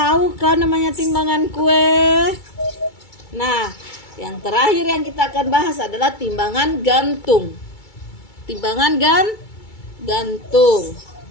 kan namanya timbangan kue? Nah, yang terakhir yang kita akan bahas adalah timbangan gantung. Timbangan gantung.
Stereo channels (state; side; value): late; right; 2.3 ms